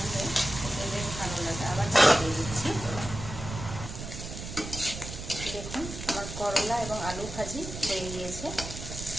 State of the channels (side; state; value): right; noise; rumble, 8 dB below the sound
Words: বেশ ভালো লাগে। আবার দিয়ে দিচ্ছি। দেখুন, আমার করলা এবং আলু ভাজি হয়ে গিয়েছে,